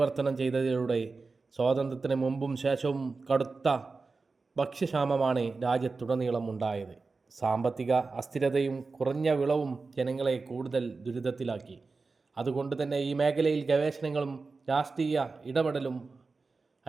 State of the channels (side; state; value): left; quieter; 4.1 dB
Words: ചെയ്തതിലൂടെ സ്വാതന്ത്ര്യത്തിന് മുമ്പും ശേഷവും കടുത്ത ഭക്ഷ്യക്ഷാമമാണ് രാജ്യത്തുടനീളം ഉണ്ടായത്. സാമ്പത്തിക അസ്ഥിരതയും കുറഞ്ഞ വിളവും ജനങ്ങളെ കൂടുതൽ ദുരിതത്തിലാക്കി. അതുകൊണ്ട് തന്നെ ഈ മേഖലയിൽ ഗവേഷണങ്ങളും രാഷ്ട്രീയ ഇടപെടലും